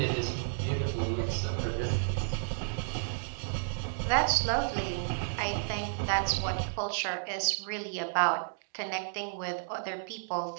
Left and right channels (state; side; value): silent; left; digital silence